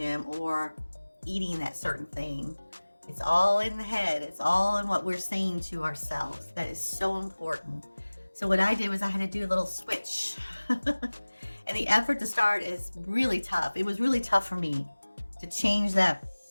or eating that certain thing. It's all in the head. It's all in what we're saying to ourselves. That is so important. So what I did was I had to do a little switch. And the effort to start is really tough. It was really tough for me to change that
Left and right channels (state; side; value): inverted; both; correlation -1.00